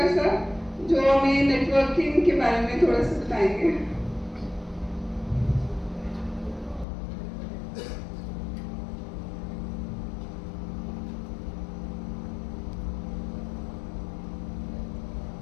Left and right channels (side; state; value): right; drops out; at 6.9 s